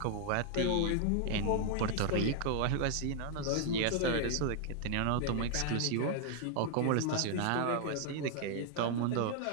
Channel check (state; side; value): different; both; correlation 0.00